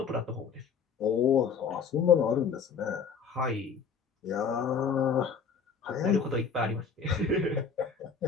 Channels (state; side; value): quieter; right; 6.0 dB